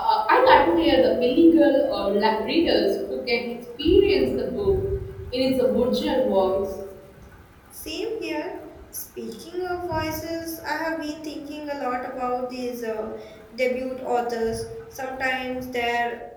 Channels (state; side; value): identical; both; correlation 1.00